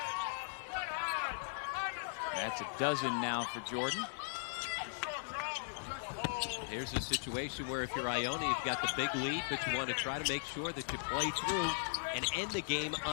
That's a dozen now for Jordan. Here's a situation where if you're Iona, you've got the big lead, but you want to try to make sure that you play through and end the game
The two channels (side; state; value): right; silent; 52 dB below the other